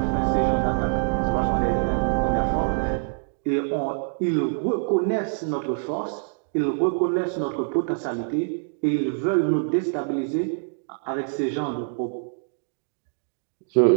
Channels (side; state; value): left; silent; digital silence